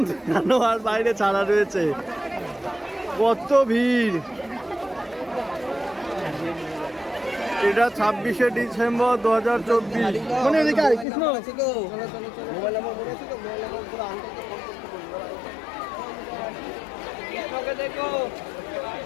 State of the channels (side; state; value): right; drops out; at 11.1 s